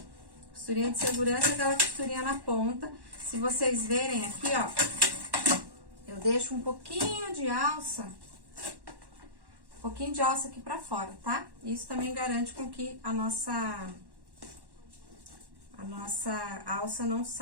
Costurinha de segurança é aquela costurinha na ponta. Se vocês verem aqui, ó, eu deixo um pouquinho de alça. Um pouquinho de alça aqui pra fora, tá? Isso também garante com que a nossa alça não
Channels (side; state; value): left; late; 1.1 ms